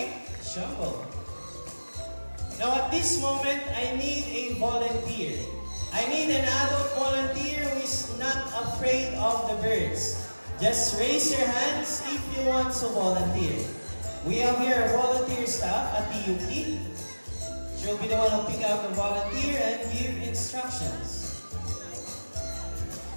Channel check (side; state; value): both; inverted; correlation -1.00